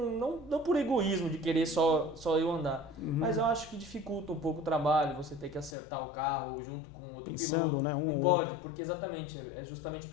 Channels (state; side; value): drops out; right; at 5.8 s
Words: egoísmo de querer só eu andar, mas eu acho que dificulta um pouco o trabalho, você ter que acertar o carro junto com outro piloto, né? Não pode, porque exatamente, é justamente